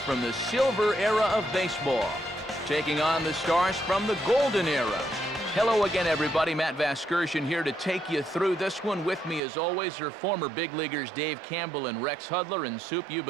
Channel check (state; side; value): drops out; left; at 9.4 s